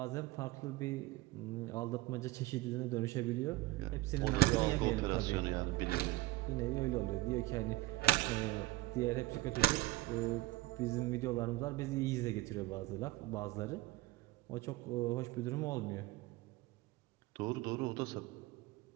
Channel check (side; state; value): left; quieter; 18.5 dB